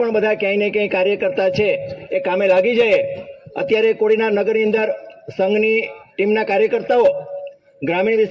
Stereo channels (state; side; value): identical; both; correlation 1.00